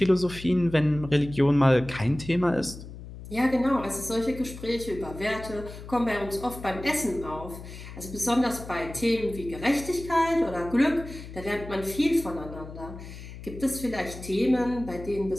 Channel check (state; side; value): noise; left; hum, 13 dB below the sound